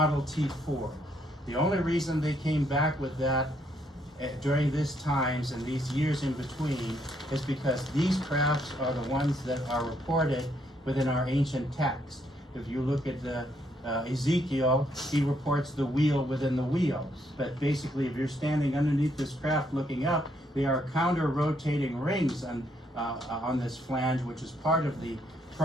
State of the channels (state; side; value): normal; both; correlation 0.73